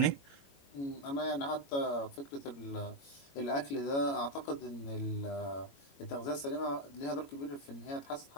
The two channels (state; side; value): late; right; 21 ms